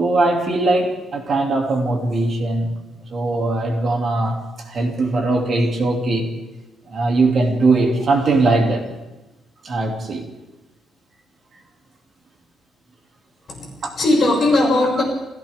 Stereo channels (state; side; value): normal; both; correlation 0.81